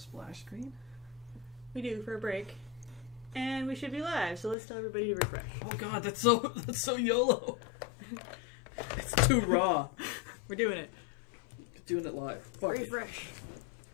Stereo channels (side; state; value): right; drops out; at 4.5 s